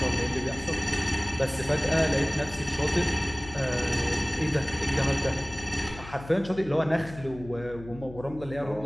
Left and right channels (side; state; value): left; noise; hum, 16 dB below the sound